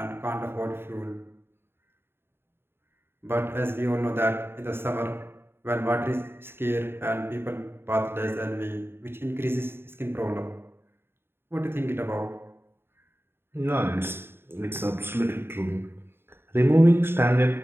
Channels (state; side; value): late; left; 0.11 ms